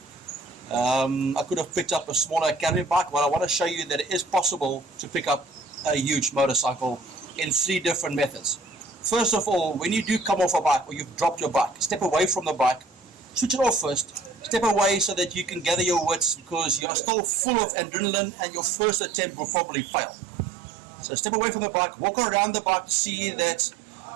I could have picked up a smaller academy bike, but I want to show you that it is possible to pick up a huge motorcycle in 3 different methods. First of all, when you do come off a bike or you've dropped your bike, step away from the bike, switch it off first, step away so that you can gather your wits, because you are still full of adrenaline and your first attempt will probably fail. So step away from the bike, walk around the bike to see that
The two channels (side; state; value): left; drops out; at 16.9 s